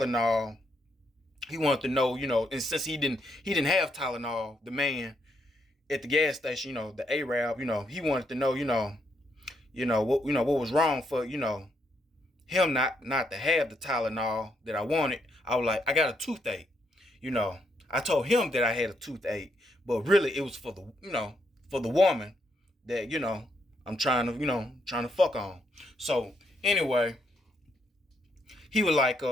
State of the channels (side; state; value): both; normal; correlation 0.77